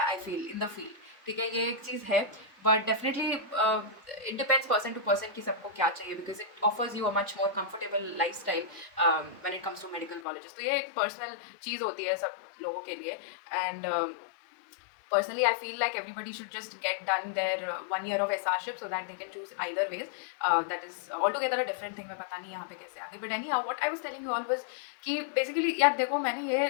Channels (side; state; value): right; drops out; at 10.2 s